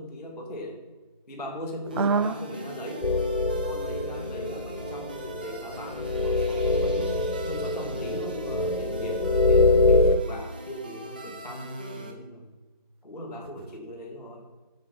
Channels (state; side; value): inverted; both; correlation -0.33